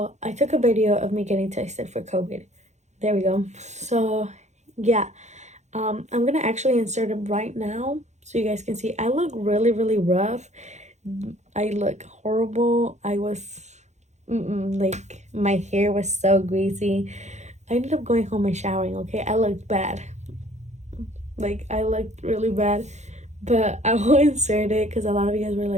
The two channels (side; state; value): left; late; 0.33 ms